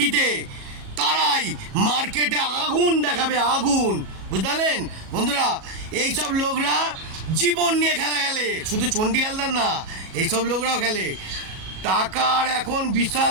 তারাই মার্কেটে আগুন দেখাবে, আগুন, বুঝলেন বন্ধুরা? এইসব লোকরা জীবন নিয়ে খেলা খেলে, শুধু চণ্ডীহালদার না, এইসব লোকরাও খেলে। টাকার এখন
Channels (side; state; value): left; late; 37 ms